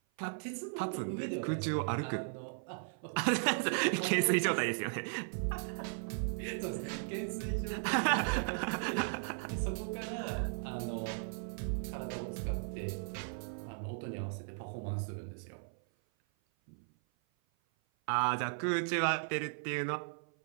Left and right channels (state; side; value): silent; left; 53 dB below the other